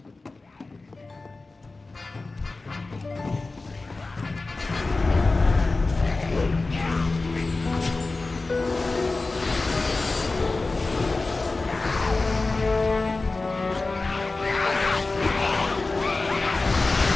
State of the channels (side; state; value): right; quieter; 3.5 dB